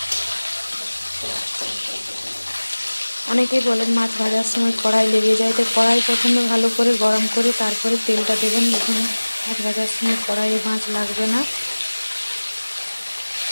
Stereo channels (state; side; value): inverted; both; correlation -1.00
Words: অনেকেই বলেন মাছ ভাজার সময় কড়াই লেগে যায়, তো কড়াই প্রথমে ভালো করে গরম করে তারপরে তেলটা দেবেন। দেখুন মাছ ভাজার সময় কড়াইয়ে মাছ লাগবে না।